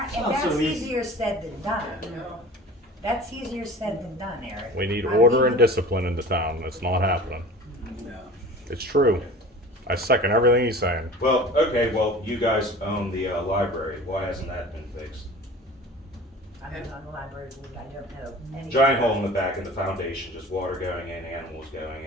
that's so easy. easier said than done. That's easier said than done, Eric. We need order and discipline in the town. It's not happening. It's true. I second everything he's saying. Well, okay, well, you guys own the library. Why hasn't that been fixed? I'm not on the library board, I don't know. anything. Giant hole in the back of the foundation, just water going in, animals going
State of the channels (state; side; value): normal; both; correlation 0.40